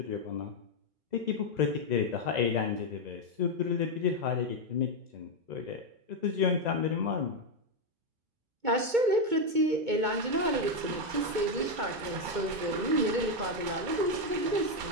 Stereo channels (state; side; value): late; left; 2.2 ms